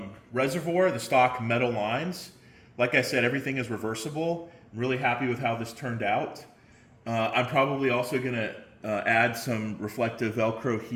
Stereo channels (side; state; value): both; identical; correlation 1.00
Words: the stock metal lines. Like I said, everything is reversible. I'm really happy with how this turned out. I'm probably also going to add some reflective Velcro